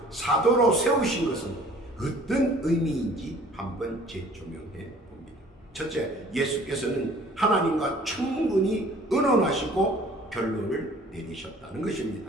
사도로 세우신 것은 어떤 의미인지 한번 재조명해 봅니다. 첫째, 예수께서는 하나님과 충분히 의논하시고 결론을 내리셨다는 것입니다.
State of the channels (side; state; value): both; normal; correlation 0.52